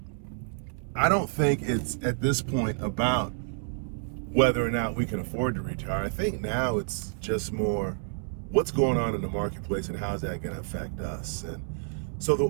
I don't think it's at this point about whether or not we can afford to retire. I think now it's just more what's going on in the marketplace and how's that going to affect us. And so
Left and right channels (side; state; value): left; silent; 59 dB below the other